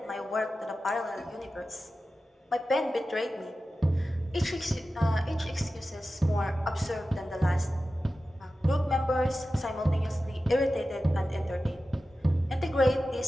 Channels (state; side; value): normal; both; correlation 0.94